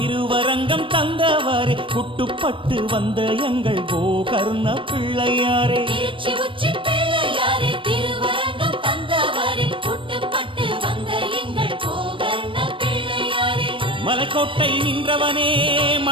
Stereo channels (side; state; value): left; late; 0.25 ms